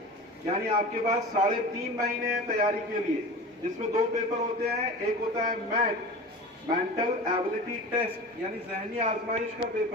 यानी आपके पास 3.5 महीने हैं तैयारी के लिए, जिसमें 2 पेपर होते हैं। एक होता है मेंटल एबिलिटी टेस्ट, यानी जहनी आजमाइश का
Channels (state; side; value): normal; both; correlation 0.34